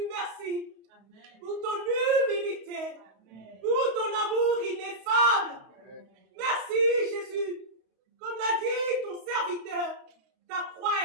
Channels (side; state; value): left; late; 31 ms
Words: merci pour ton humilité, pour ton amour ineffable. Merci Jésus. Comme l'a dit ton serviteur, ta